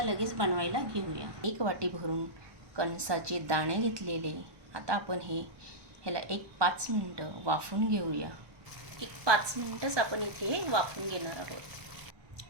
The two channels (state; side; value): late; left; 1.1 ms